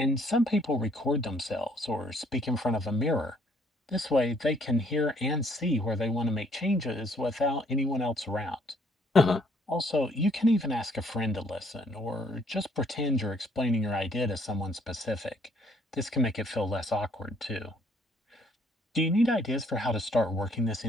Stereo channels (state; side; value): normal; both; correlation 0.64